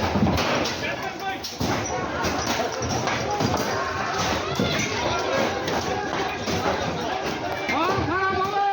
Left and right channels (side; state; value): both; identical; correlation 1.00